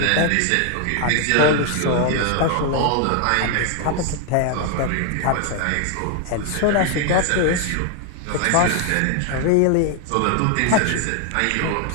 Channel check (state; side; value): different; both; correlation 0.00